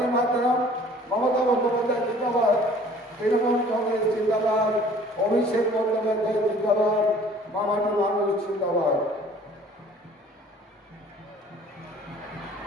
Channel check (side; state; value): both; normal; correlation 0.52